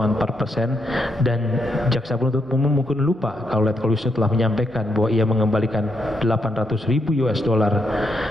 4%, dan jaksa penuntut umum mungkin lupa kalau Letkol Wisnu telah menyampaikan bahwa ia mengembalikan 800.000 US dollar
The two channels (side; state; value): both; normal; correlation 0.79